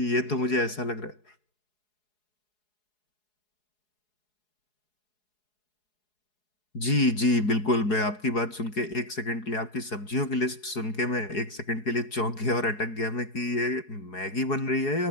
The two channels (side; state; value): right; late; 4.7 ms